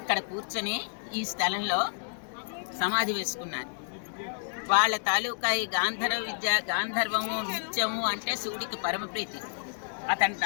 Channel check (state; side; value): silent; right; digital silence